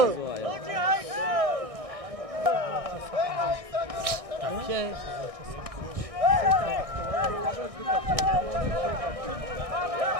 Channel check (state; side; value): late; left; 1.6 ms